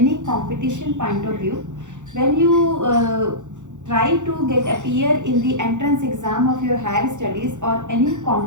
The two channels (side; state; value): left; late; 0.85 ms